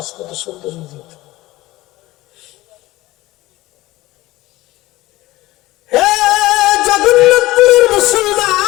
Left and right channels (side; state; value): right; quieter; 18.2 dB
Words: কত সুন্দর হয়ে যেত। হে জগন্নাথপুরের